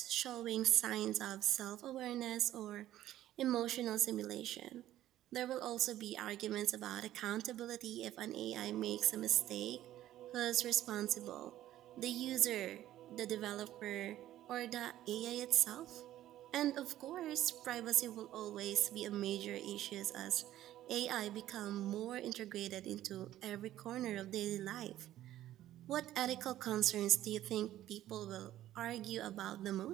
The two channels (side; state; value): left; quieter; 13.4 dB